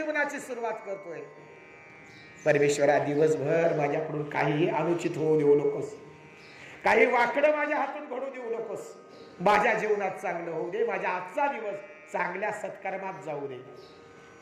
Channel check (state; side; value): identical; both; correlation 1.00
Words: सुरुवात करतोय. परमेश्वरा दिवसभर माझ्याकडून काही अनुचित होऊ देऊ नकोस, काही वाकडं माझ्या हातून घडू देऊ नकोस. माझ्या जीवनात चांगलं होऊ दे, माझ्या आजचा दिवस चांगल्या सत्कर्मात जाऊ दे.